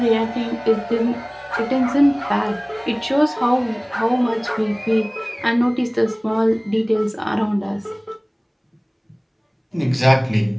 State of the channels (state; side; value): identical; both; correlation 1.00